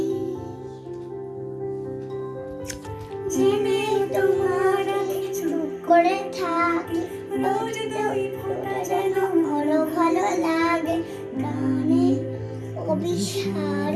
জেনে তোমার চুপ করে থাকি, রোজ দুই ফোঁটা যেন আরো ভালো লাগে। গানে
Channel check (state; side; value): identical; both; correlation 1.00